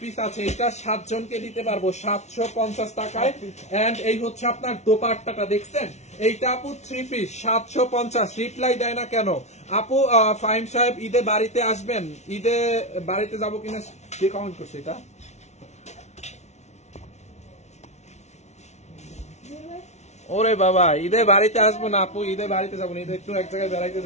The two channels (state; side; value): late; right; 0.32 ms